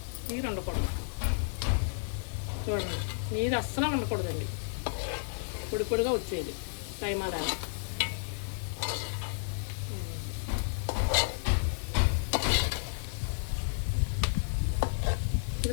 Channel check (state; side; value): silent; right; 57 dB below the other